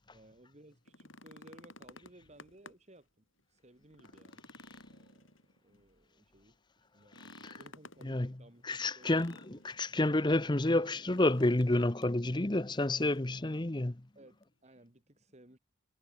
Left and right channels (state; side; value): normal; both; correlation 0.69